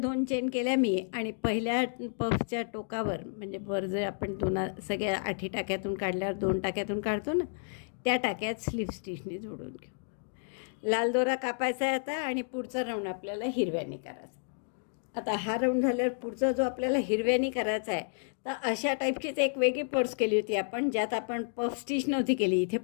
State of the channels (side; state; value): right; silent; digital silence